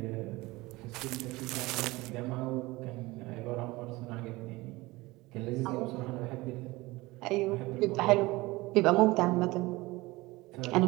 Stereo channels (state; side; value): quieter; left; 21.0 dB